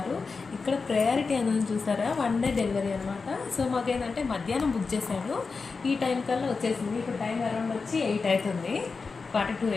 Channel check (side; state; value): right; quieter; 4.5 dB